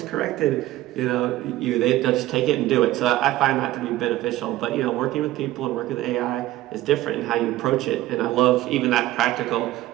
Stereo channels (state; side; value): quieter; left; 15.8 dB